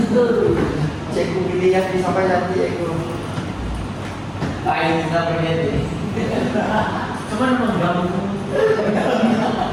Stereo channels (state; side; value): identical; both; correlation 1.00